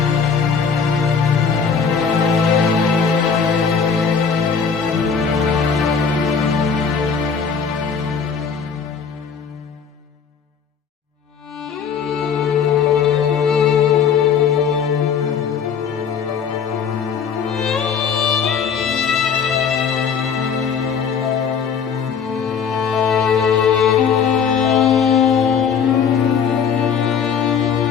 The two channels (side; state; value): right; quieter; 6.5 dB